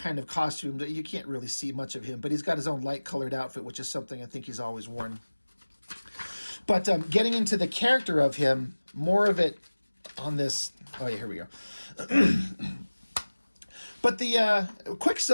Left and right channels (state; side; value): inverted; both; correlation -1.00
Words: of costume that you can't really see much of him, but he's got his own light colored outfit, which is something I think he's always worn. But getting into the character of him, more of it on this. Oh yeah, here we go. But the